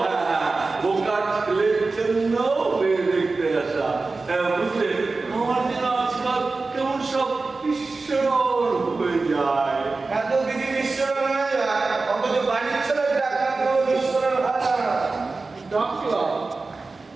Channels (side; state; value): left; quieter; 3.8 dB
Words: হ্যাঁ, বোকার ছেলের জন্য মেয়ে দেখতে আসা। বুঝলে, আমার যেন আজকাল কেমন সব ঈশ্বর হয়ে যায়। এত কিছু ঈশ্বরের হয়ে যায়, অথচ বাড়ির ছেলে ডাক্তার ঈশ্বরের হয় না। ডাকলাম?